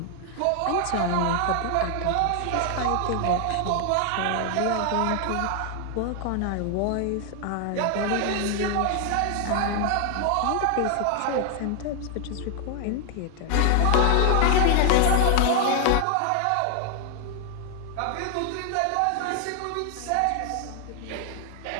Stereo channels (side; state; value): both; different; correlation 0.00